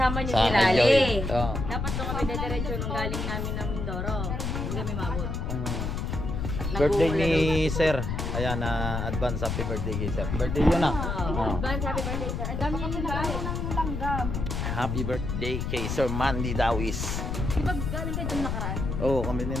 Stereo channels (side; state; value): left; noise; rumble, 3 dB below the sound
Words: niyo Sa si akin, Lali. Joy. Oo. Dapat doon kami dediretso nung galing namin ng Mindoro. Hindi kami mabot. Birthday ni Sir. Ayan, advance happy birthday kay Sir. Birthday yun ah. Oh. Advance happy birthday, Sir. Ang dami kami nagkaroon ng langgam. Happy birthday kay Sir Mandy Dawis. Di ba galing kayo doon nakaraan? Oo, kami din